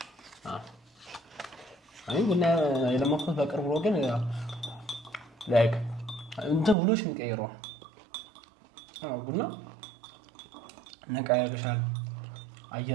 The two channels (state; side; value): drops out; left; at 6.8 s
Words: አይ ቡና የለመድኩት በቅርቡ ነው፣ ግን ላይክ እንትን ውሎሽ የሚቀይረው ቡና ነቃ ያደርግሻል።